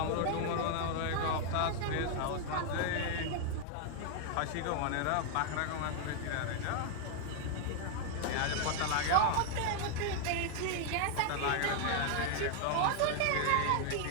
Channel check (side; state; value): both; different; correlation 0.00